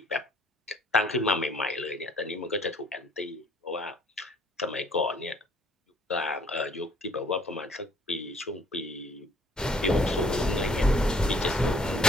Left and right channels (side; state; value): both; normal; correlation 0.59